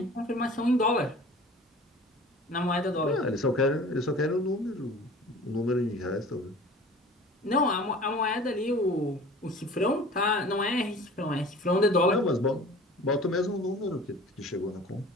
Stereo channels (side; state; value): both; normal; correlation 0.43